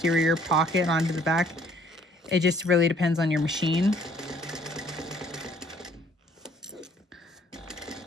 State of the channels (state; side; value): normal; both; correlation 0.61